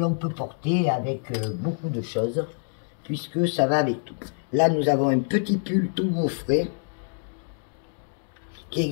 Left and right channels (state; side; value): silent; right; 61 dB below the other